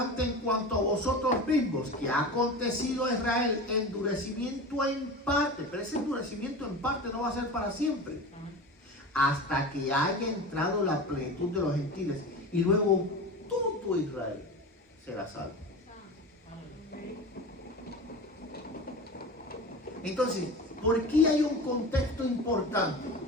en cuanto a vosotros mismos, que ha acontecido a Israel endurecimiento en parte, pero ese endurecimiento en parte no va a ser para siempre, hasta que haya entrado la plenitud de los gentiles, y luego todo Israel será salvo. Entonces, ¿por qué hay un contexto importante?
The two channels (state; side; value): normal; both; correlation 0.30